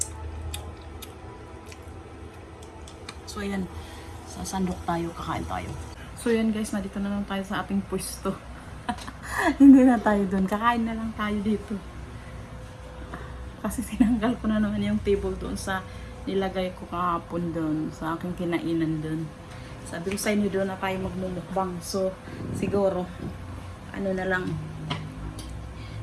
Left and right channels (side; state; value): both; identical; correlation 1.00